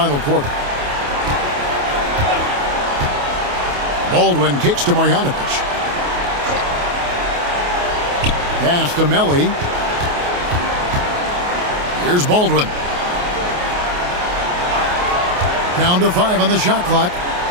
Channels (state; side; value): late; left; 28 ms